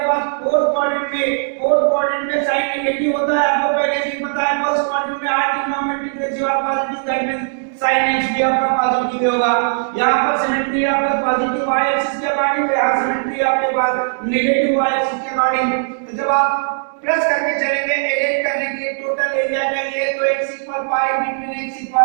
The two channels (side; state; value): left; silent; digital silence